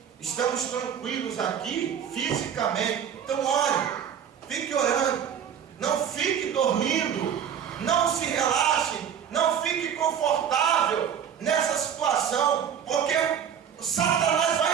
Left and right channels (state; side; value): quieter; left; 8.4 dB